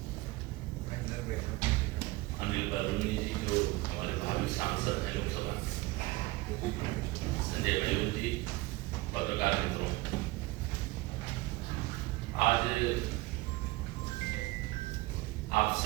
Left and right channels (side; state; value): left; quieter; 20.9 dB